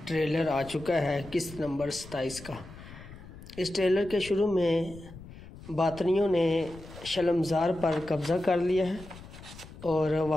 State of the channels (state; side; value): noise; left; rumble, 16 dB below the sound